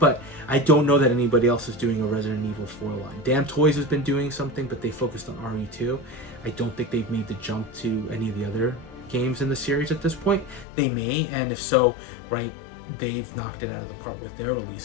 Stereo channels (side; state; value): right; drops out; at 10.7 s